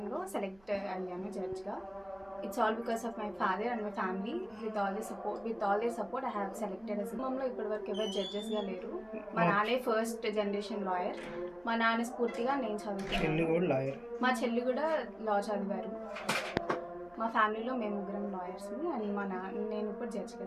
సెలెక్ట్ అయ్యాను జడ్జ్గా. It's all because of my father and my family. With all their support, I have selected as మమ్మల్ని ఇప్పటివరకు ఎవరు జడ్జెస్గా లేరు. మా నాన్నే ఫస్ట్ జనరేషన్ లాయర్. మా నాన్న స్ఫూర్తిగా నేను చదువుతున్నాను. మా చెల్లి కూడా లా చదివారు. మా ఫ్యామిలీలో మేము ముగ్గురం లాయర్స్ని అండ్ నేను ఇప్పుడు జడ్జిగా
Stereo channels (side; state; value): right; noise; hum, 29 dB below the sound